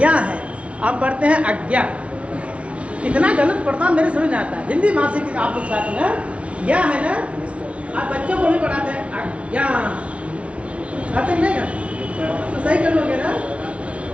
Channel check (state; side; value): late; left; 0.062 ms